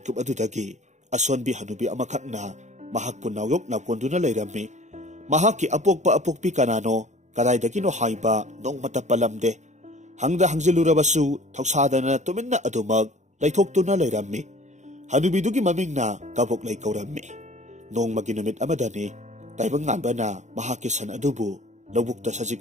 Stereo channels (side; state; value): left; late; 0.34 ms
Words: adudagi asonbi hanubi amakhakna mahakpu nawyok nakonduna leirammi. Mahakki apokpa apokpi kanano kadaidagino haiba nongmata palamde. Hangda hangzilurabasu thausadana tuminna adumag laithoktuna leirammi. Hanubidugi mamingna kabok lay kaurammi. Nong maginumit amadani, taibang nganba na mahakisan adubu, lawukta